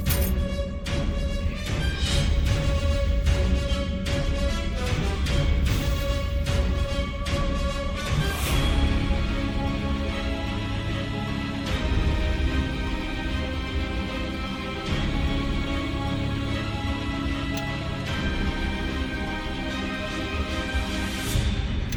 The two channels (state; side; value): identical; both; correlation 1.00